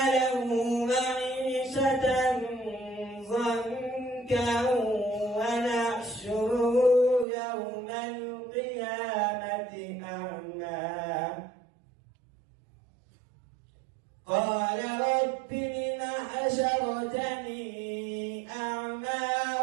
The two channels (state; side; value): drops out; left; at 7.2 s